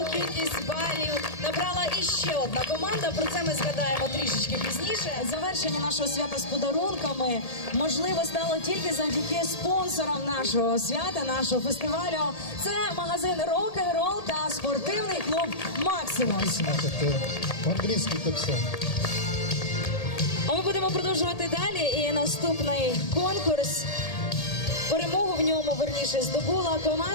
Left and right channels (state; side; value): late; right; 1.8 ms